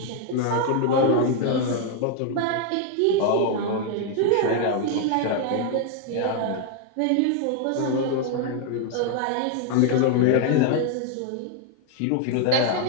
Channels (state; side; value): different; both; correlation 0.00